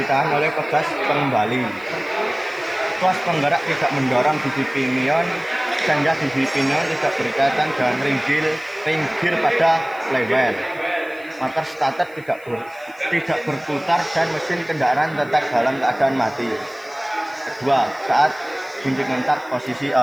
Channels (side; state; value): left; noise; hiss, 27 dB below the sound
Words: oleh pegas pengembali. Tuas penggerak tidak mendorong gigi pinion sehingga gigi pinion tidak berkaitan dengan ring gear pada flywheel. Motor starter tidak berputar dan mesin kendaraan tetap dalam keadaan mati. Kedua, saat kunci kontak posisi